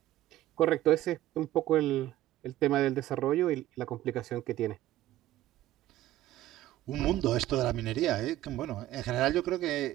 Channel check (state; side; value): quieter; left; 14.5 dB